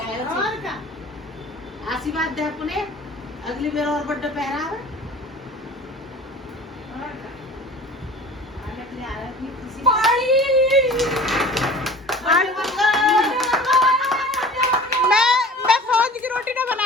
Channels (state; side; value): normal; both; correlation 0.42